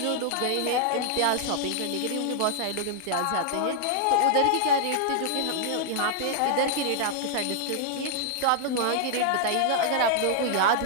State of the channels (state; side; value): different; both; correlation -0.01